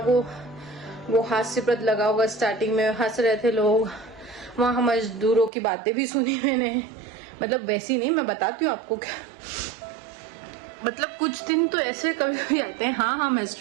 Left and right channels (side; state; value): left; drops out; at 5.5 s